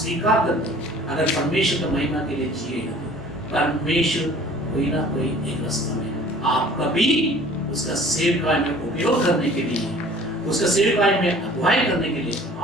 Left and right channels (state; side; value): normal; both; correlation 0.49